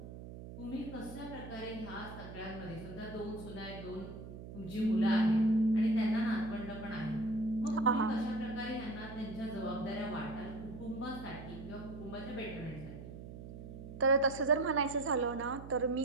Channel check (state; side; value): noise; right; hum, 12 dB below the sound